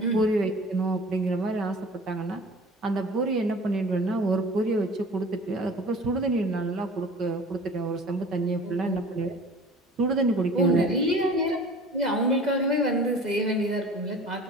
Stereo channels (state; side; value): normal; both; correlation 0.43